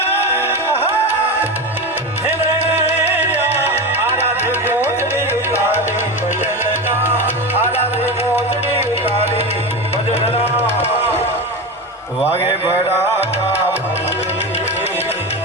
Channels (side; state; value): both; normal; correlation 0.21